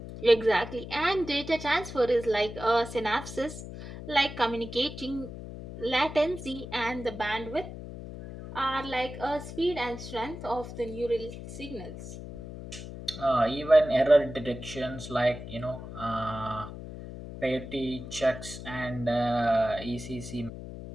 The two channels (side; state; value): left; noise; hum, 11 dB below the sound